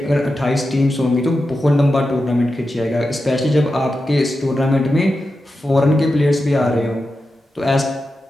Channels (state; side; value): normal; both; correlation 0.90